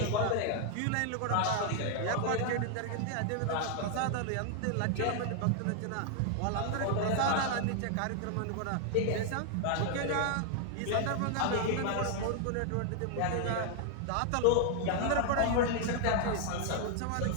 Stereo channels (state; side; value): different; both; correlation 0.00